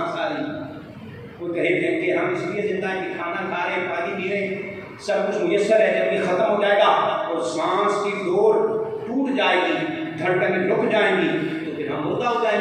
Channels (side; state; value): both; identical; correlation 1.00